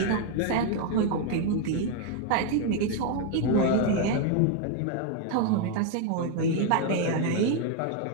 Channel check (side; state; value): both; different; correlation 0.01